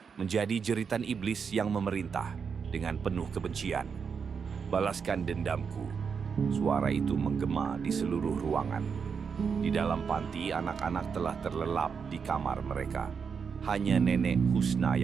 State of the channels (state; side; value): quieter; left; 6.2 dB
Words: menjadi jeritan iblis yang memerintah dengan penuh kebencian. "Balaskan dendamku." Suara itu menggema di seluruh ruangan. Di dalam panti, anak-anak telah terlelap di kamar mereka. Hanya Nenek Husna